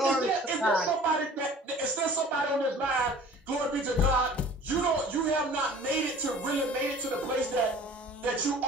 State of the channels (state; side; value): normal; both; correlation 0.47